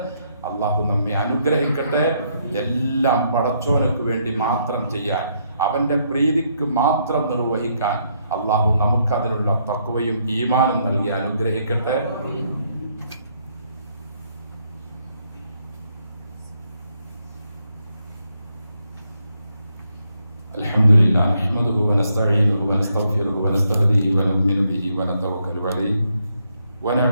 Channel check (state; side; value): inverted; both; correlation -0.75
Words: അള്ളാഹു നമ്മെ അനുഗ്രഹിക്കട്ടെ. എല്ലാം പടച്ചോനക്ക് വേണ്ടി മാത്രം ചെയ്യാൻ, അവൻ്റെ പ്രീതിക്ക് മാത്രം നിർവഹിക്കാൻ അള്ളാഹു നമുക്കതിനുള്ള തഖ്വയും ഈമാനും നൽകി അനുഗ്രഹിക്കട്ടെ. അൽഹംദുലില്ലാ നഹ്മദുഹു വനസ്തഈനുഹു വനസ്തഗ്ഫിറുഹു വനസ്തഹ്ദിഹി വനുഅ്മിനു ബിഹി വനതവക്കലു അലൈഹി